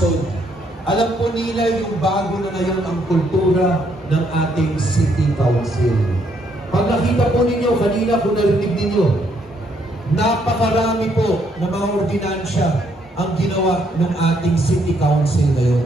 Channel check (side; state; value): both; normal; correlation 0.71